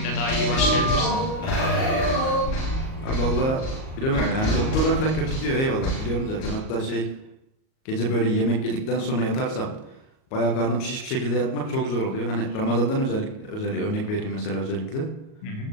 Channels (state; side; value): late; right; 38 ms